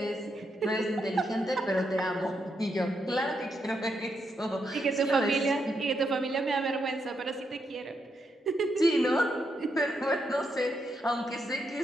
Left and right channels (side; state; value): both; normal; correlation 0.81